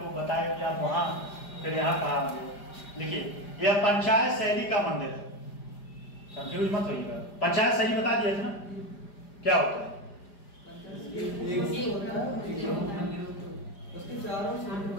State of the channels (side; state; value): right; late; 5.0 ms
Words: बताया कि आप वहां फिर यहाँ कहा। लिखिए, यह पंचायत शैली का मंदिर है। कंफ्यूज मत होइएगा, पंचायत शैली बता दिया था ना क्या होता है?